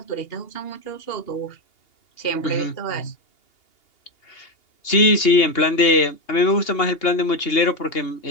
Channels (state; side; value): late; right; 2.8 ms